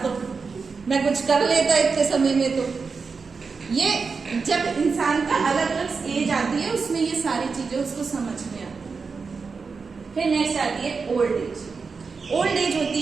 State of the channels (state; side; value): quieter; left; 4.9 dB